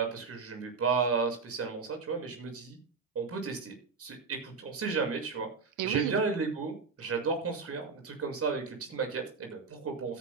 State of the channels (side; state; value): left; quieter; 4.8 dB